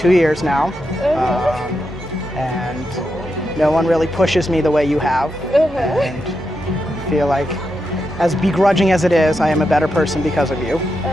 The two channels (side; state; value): both; normal; correlation 0.86